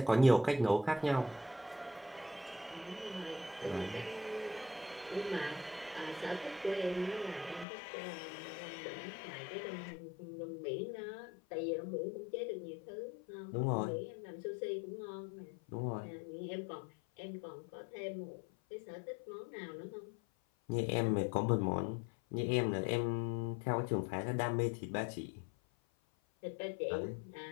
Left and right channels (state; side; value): drops out; right; at 7.7 s